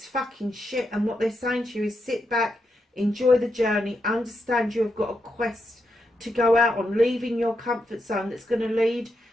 fucking shit, and what they're saying to you is sit back, enjoy the journey, understand you have got a quest to go out on, leaving your comfort zone that's going to lead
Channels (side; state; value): both; normal; correlation 0.83